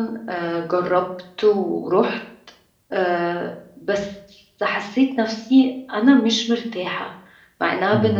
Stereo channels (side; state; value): both; identical; correlation 1.00